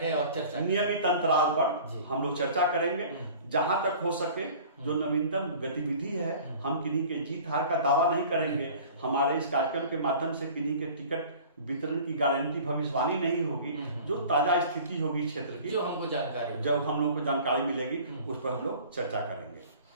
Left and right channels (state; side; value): inverted; both; correlation -0.45